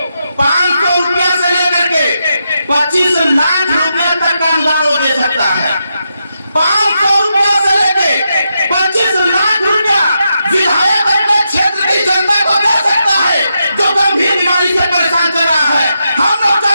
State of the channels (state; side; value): inverted; both; correlation -0.84